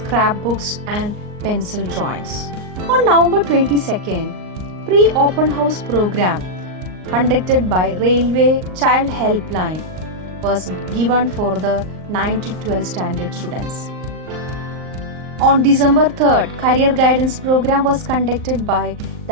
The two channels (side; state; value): left; late; 38 ms